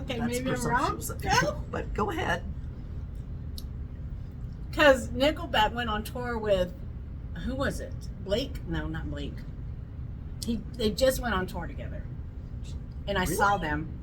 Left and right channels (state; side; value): identical; both; correlation 1.00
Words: That's maybe I'm wrong. presumptuous of you, but go ahead. Because Nickelback went on tour with, who was it? Blake? No, not Blake. They just went on tour together, and I saw them.